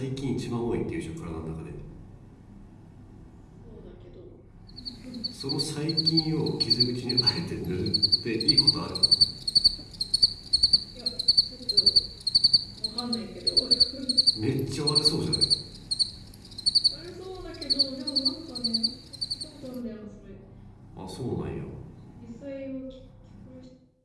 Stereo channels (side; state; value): both; identical; correlation 1.00